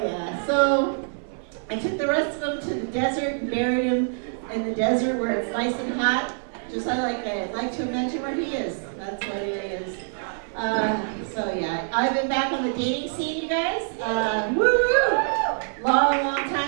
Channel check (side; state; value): left; silent; digital silence